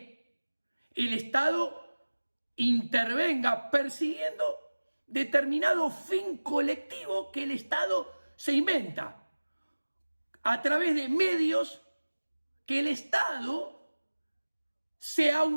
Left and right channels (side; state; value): both; inverted; correlation -1.00